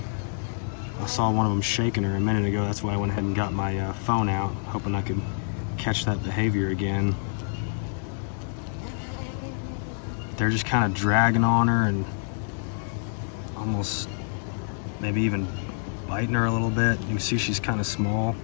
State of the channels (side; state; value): right; silent; 60 dB below the other